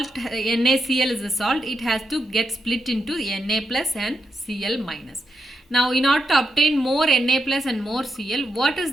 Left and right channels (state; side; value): normal; both; correlation 0.84